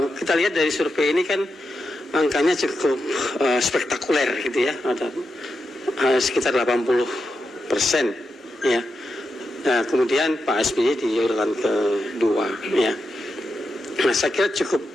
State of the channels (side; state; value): both; normal; correlation 0.87